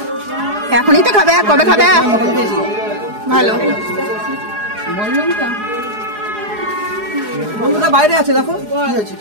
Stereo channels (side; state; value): left; late; 4.8 ms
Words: এখনই তো খাবে, কবে খাবে? ভালো বন্ধুটা বাইরে আছে দেখো। কি হয়েছে,